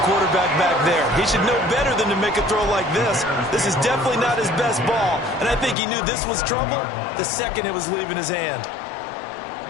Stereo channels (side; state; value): right; drops out; at 5.8 s